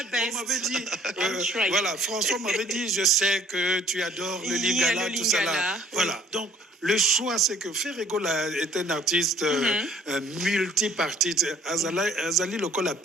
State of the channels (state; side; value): normal; both; correlation 0.57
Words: best. On m'avait dit, voilà, François m'avait dit, je sais que tu adores le Lingala, tout ça là. Voilà, donc le choix, c'est que Ferrego est un artiste multipartite. Azali Lokola à